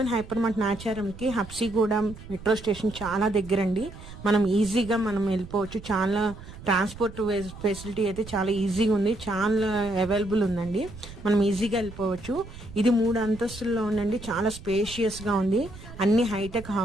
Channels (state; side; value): noise; right; rumble, 15 dB below the sound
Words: హైపర్ మార్ట్ నాచారంకి హబ్సిగూడెం మెట్రో స్టేషన్ చాలా దగ్గర అండి. మనం ఈజీగా వెళ్ళిపోవచ్చు. చాలా ట్రాన్స్పోర్ట్ ఫెసిలిటీ అయితే చాలా ఈజీగా ఉంది, చాలా అవైలబుల్ ఉందండి. మనం ఈజీగా వెళ్ళిపోవచ్చు. ఇది 3 అంతస్తుల్లో ఉందండి. చాలా స్పేషియస్ గా ఉంది. అన్ని హైటెక్